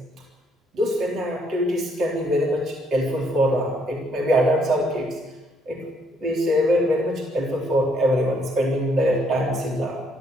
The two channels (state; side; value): normal; both; correlation 0.69